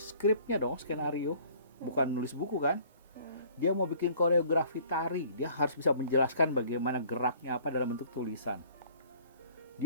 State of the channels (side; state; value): both; inverted; correlation -0.55